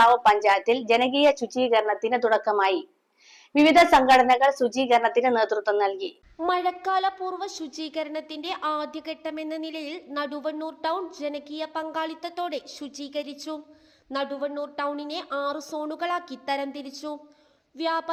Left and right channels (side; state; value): both; identical; correlation 1.00